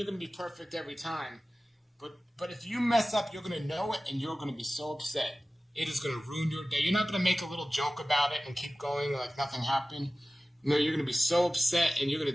going to be perfect every time, but if you mess up, you're going to know it and you're going to be so upset. It is going to ruin your day. You're not going to make a little joke about it and keep going like nothing happened. You're going to be so upset and you're going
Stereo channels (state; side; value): normal; both; correlation 0.97